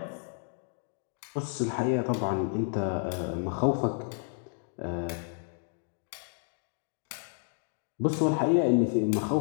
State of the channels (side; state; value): right; silent; 57 dB below the other